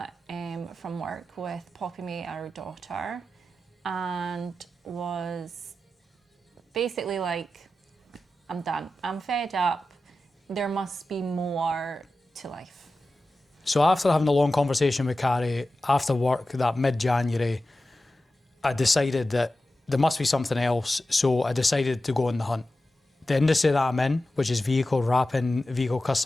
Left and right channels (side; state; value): both; normal; correlation 0.93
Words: from work with Poppy May, our daughter, and was basically like, I'm done. I'm fed up. There must be more to life. So after having a long conversation with Carrie after work that mid-January, I decided that there must be something else. So I decided to go on the hunt. The industry that I'm in, which is vehicle wrapping, vehicle